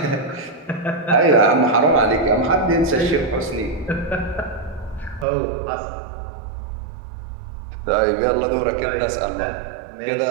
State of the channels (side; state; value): left; drops out; at 5.2 s